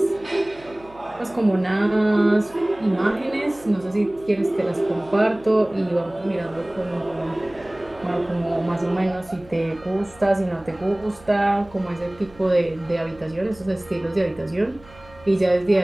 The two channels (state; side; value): noise; right; hum, 24 dB below the sound